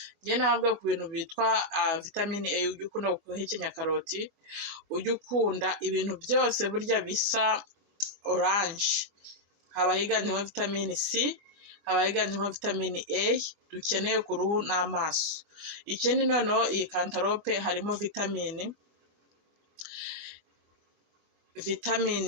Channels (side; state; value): left; late; 24 ms